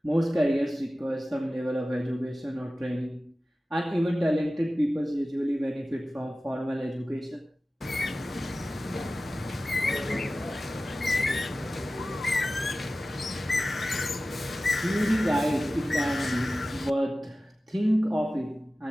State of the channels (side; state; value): both; normal; correlation 0.96